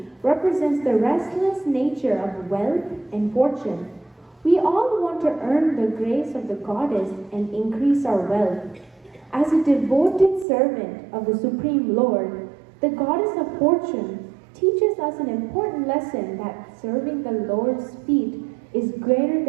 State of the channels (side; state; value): left; drops out; at 10.5 s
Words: represents the restless nature of wealth and fortune. We all want to earn the grace of the goddess and increase our wealth. As a devoted servant of the Supreme Lord, the goddess of fortune teaches us an important lesson that serving the Lord's feet is greater